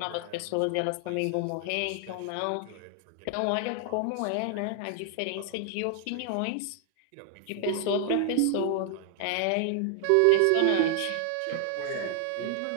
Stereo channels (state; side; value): different; both; correlation 0.00